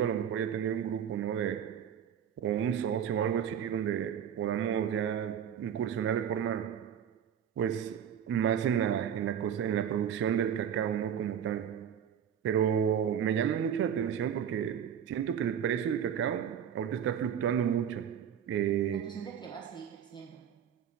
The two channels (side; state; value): left; quieter; 8.8 dB